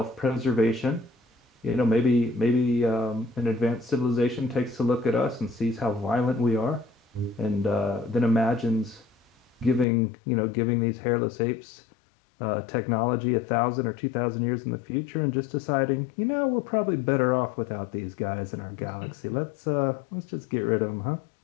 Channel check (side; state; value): right; drops out; at 9.9 s